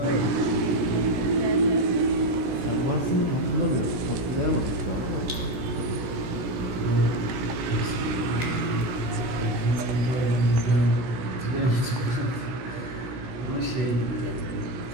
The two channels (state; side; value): late; left; 17 ms